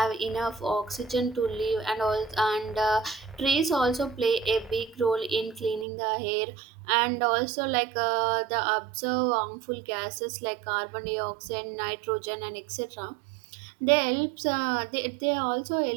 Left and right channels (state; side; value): drops out; left; at 5.9 s